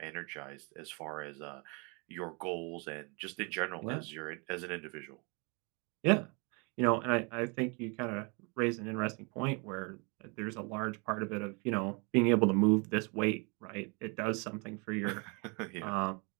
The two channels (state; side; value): quieter; left; 32.0 dB